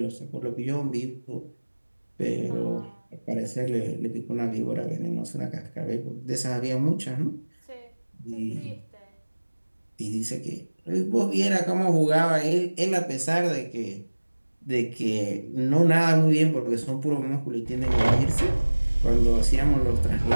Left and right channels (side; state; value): both; inverted; correlation -1.00